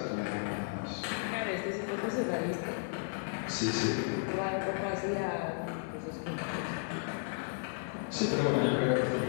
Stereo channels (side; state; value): right; silent; 55 dB below the other